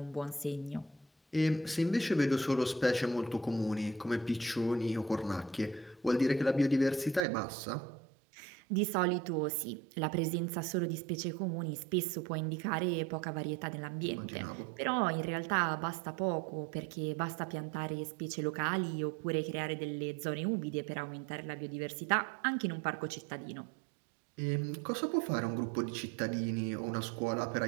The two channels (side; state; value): left; drops out; at 7.2 s